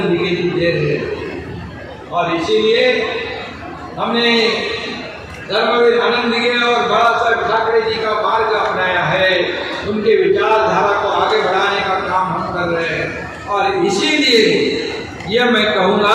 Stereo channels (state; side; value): identical; both; correlation 1.00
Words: दिगे जी दे रहे। और इसीलिए हमने धर्मवीर आनंद दिगे और बाला साहब ठाकरे जी का मार्ग अपनाया है। उनके विचारधारा को आगे बढ़ाने का काम हम कर रहे हैं। और इसीलिए यह मैं